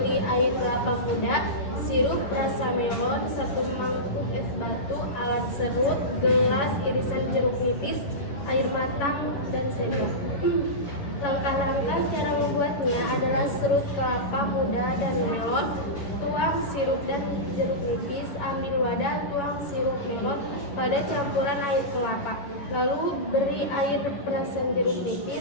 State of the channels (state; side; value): late; right; 11 ms